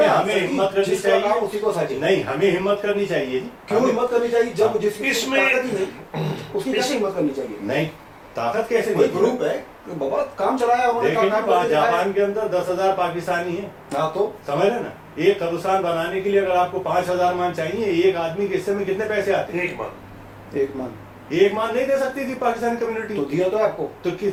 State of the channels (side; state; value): both; identical; correlation 1.00